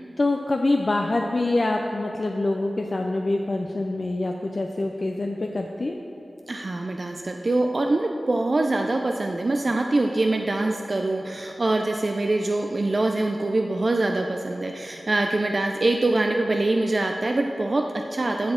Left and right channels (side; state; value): both; normal; correlation 0.96